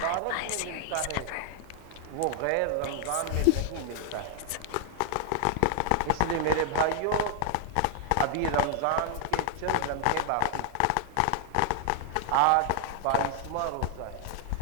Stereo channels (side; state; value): both; different; correlation 0.00